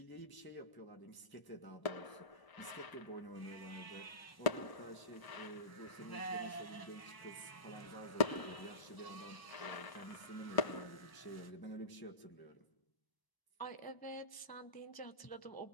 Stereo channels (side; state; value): right; late; 1.0 ms